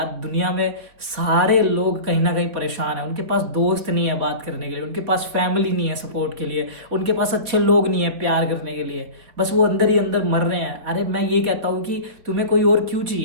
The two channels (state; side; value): late; left; 4.4 ms